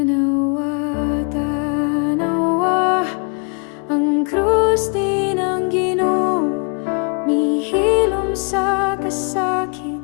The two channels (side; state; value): right; quieter; 37.1 dB